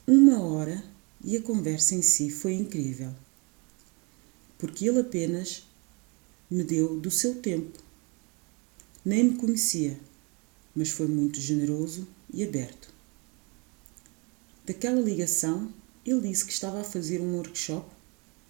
1 hora e a conversa em si foi incrível. Porque ele apenas me deu do seu tempo. Nem me conhecia, mas foi muito generoso e aberto. Daquela ligação, ele disse que estava a fazer um workshop,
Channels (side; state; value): left; quieter; 30.4 dB